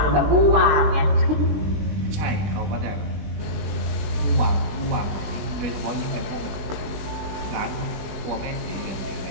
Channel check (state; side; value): late; left; 20 ms